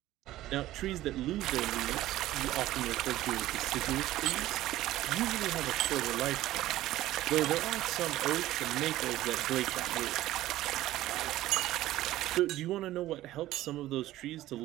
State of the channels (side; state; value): left; quieter; 15.2 dB